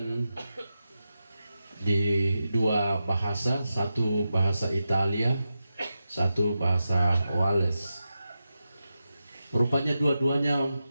di dua bahasa, satu bahasa Italia, satu bahasa Wales. Rupanya dua-duanya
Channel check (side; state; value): both; inverted; correlation -0.90